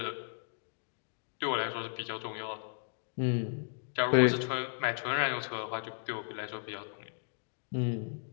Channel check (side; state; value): right; silent; digital silence